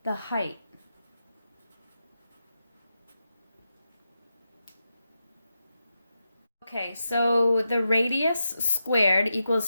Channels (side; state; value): both; inverted; correlation -0.88